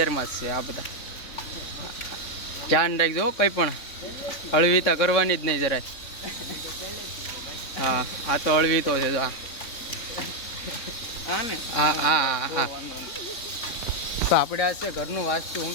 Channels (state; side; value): late; right; 3.6 ms